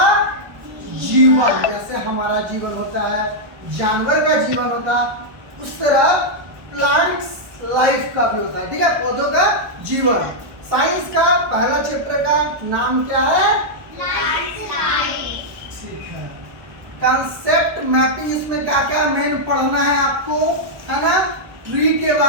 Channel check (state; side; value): late; left; 1.0 ms